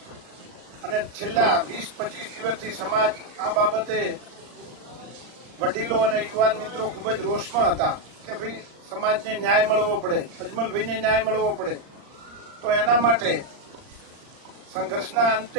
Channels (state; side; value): late; left; 39 ms